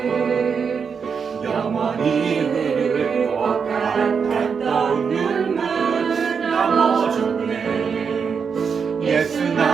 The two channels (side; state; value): left; quieter; 6.1 dB